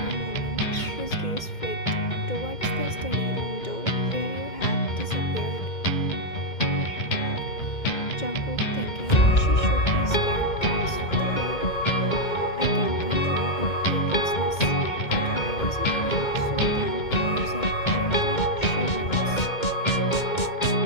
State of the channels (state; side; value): late; right; 2.2 ms